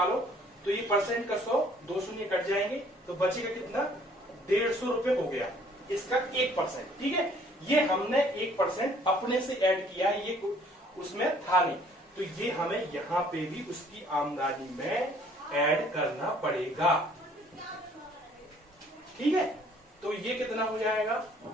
तो ये परसेंट का 100, 2 शून्य कट जाएंगे, तो बचेगा कितना, 150 रुपए हो गया इसका 1%, ठीक है। ये हमने 1% अपने से ऐड किया, ये उसमें था नहीं, तो ये हमें यहां पे भी उसकी आमदनी में ऐड करना पड़ेगा, ठीक है। तो ये कितना हो जाएगा,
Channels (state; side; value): normal; both; correlation 0.59